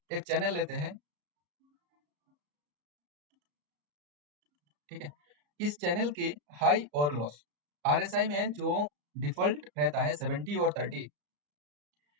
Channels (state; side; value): late; left; 34 ms